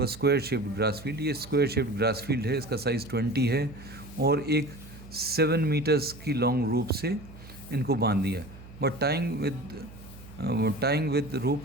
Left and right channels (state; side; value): noise; right; hum, 18 dB below the sound